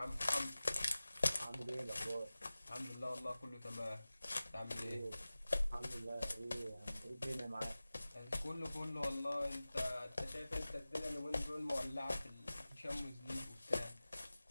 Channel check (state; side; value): inverted; both; correlation -0.97